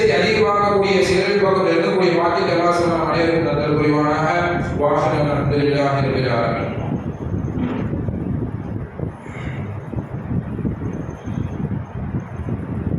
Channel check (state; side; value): identical; both; correlation 1.00